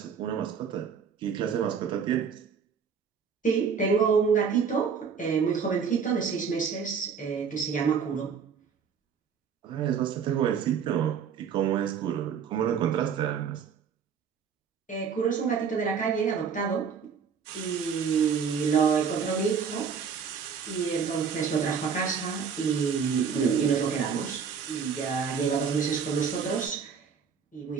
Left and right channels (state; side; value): quieter; left; 6.6 dB